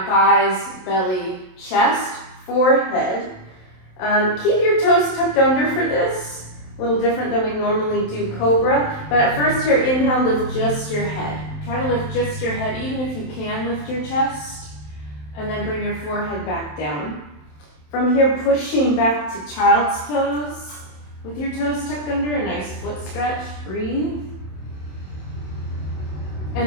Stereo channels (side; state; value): right; late; 27 ms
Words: thighs, belly, chest, forehead. Keep your toes tucked under for this. A little different than we normally do cobra. But at first here, inhale, lift just your head. Try to lift just your head, even if you can lift your chest. And then bring your forehead back down. From here, pushing back to child's pose. With your toes tucked under, a nice foot stretch. Breathe.